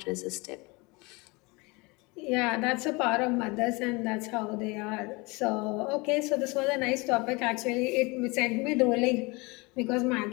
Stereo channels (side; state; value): right; quieter; 26.2 dB